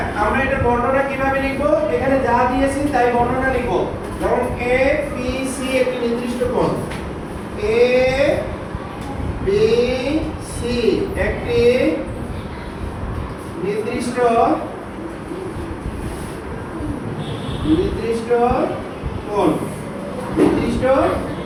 আমরা এটা বর্ণনা কিভাবে লিখব? এখানে যা দিয়েছি তাই বর্ণনা লিখব। যেমন ABC একটি নির্দিষ্ট কোণ, ABC একটি নির্দিষ্ট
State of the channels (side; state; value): both; identical; correlation 1.00